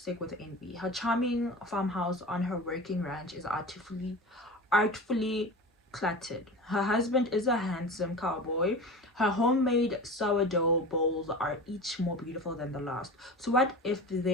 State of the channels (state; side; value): normal; both; correlation 0.32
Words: with envy. Her charming farmhouse on her working ranch is artfully cluttered. Her husband is a handsome cowboy. Her homemade sourdough bowls are each more beautiful than the last. So what if